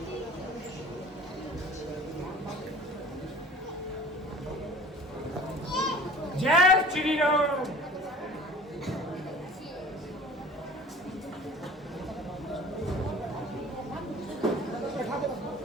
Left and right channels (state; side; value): normal; both; correlation 0.44